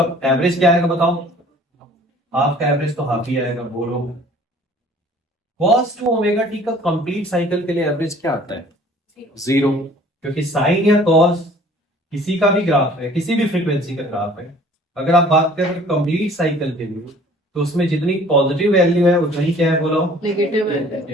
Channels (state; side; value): normal; both; correlation 0.52